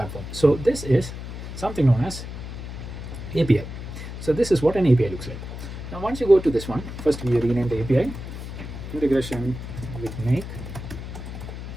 So this is something known as API. So this is what an API looks like. Now once you go to this one, first we rename the API integration with Make.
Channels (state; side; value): noise; left; hum, 9 dB below the sound